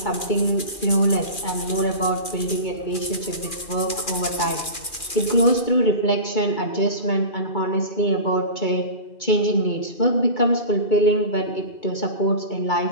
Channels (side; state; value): right; late; 2.4 ms